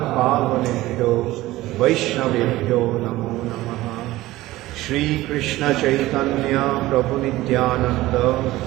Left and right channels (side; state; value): left; quieter; 17.3 dB